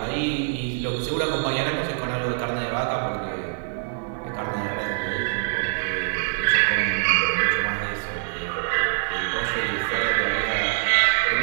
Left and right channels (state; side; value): silent; left; digital silence